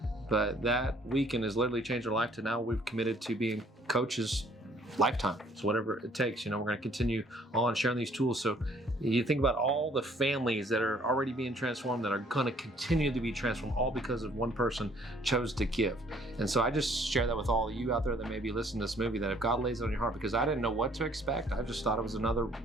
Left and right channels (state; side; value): normal; both; correlation 0.60